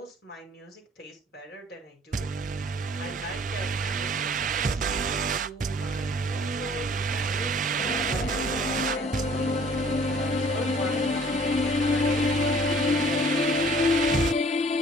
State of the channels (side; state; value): both; normal; correlation 0.54